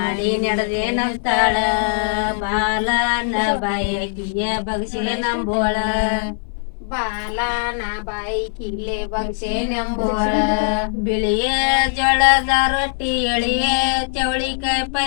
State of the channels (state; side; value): silent; right; digital silence